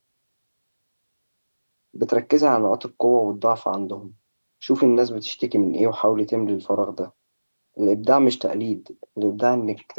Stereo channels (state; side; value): inverted; both; correlation -1.00